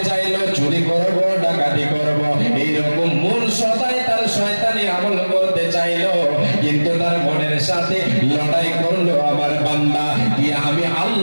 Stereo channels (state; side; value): inverted; both; correlation -1.00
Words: চাইলো চুরি করবো, ডাকাতি করবো, এইরকম মন সদাই তার শয়তানি আমল করতে চাইলো। কিন্তু তার মনের সাথে লড়াই করলো আমার বান্দা, দিয়ে আমি